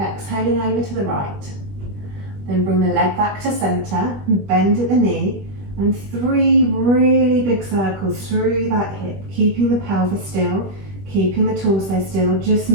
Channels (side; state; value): left; late; 21 ms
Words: over to the right. Then bring the leg back to centre, bend at the knee, and 3 really big circles through that hip, keeping the pelvis still, keeping the torso still, just